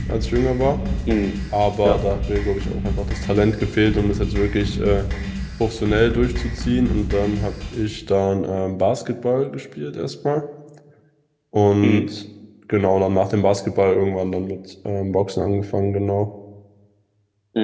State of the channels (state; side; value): identical; both; correlation 1.00